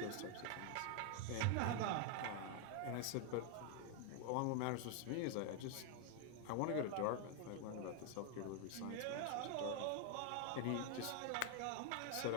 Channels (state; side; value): different; both; correlation 0.00